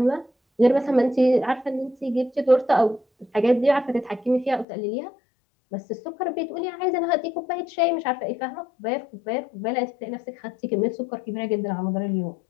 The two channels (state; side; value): drops out; right; at 4.7 s